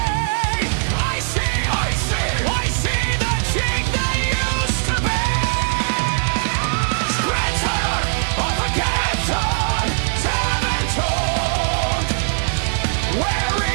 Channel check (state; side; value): silent; left; digital silence